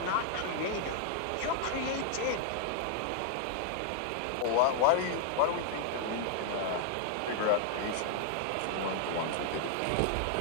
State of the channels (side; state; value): both; different; correlation -0.01